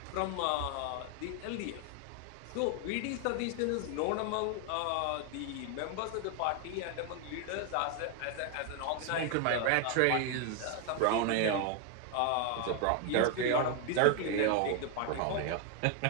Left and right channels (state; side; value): different; both; correlation 0.01